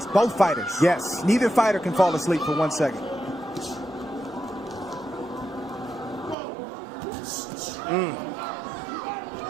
both fighters. Yes. Neither fighter can fall asleep for 1 second.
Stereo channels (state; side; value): drops out; left; at 6.4 s